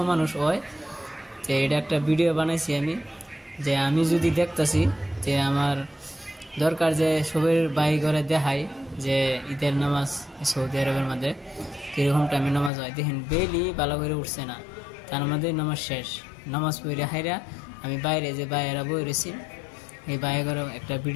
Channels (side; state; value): right; drops out; at 12.7 s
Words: মানুষ হয়। তো এটা একটা ভিডিও বানাইছি আমি, যে আমি যদি দেখতেছি যে আমার দরকার যে সবের বাড়ি ঘরে দেখাই যে ঈদের নামাজ সৌদি আরবের মধ্যে কীরকম টাইমে নামাজ হয়। দেখেন বেলি ভালো করে উঠছে না, তার মধ্যে নামাজ শেষ, নামাজ পড়ে হাইরা আমি বাইরে যে বাইরা বই রয়েছি এই বাইরে ঘরে একটা